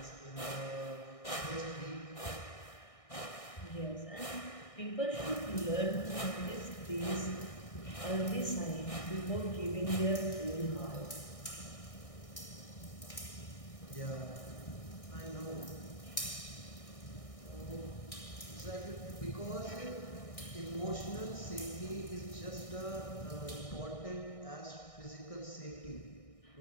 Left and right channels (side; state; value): right; late; 1.6 ms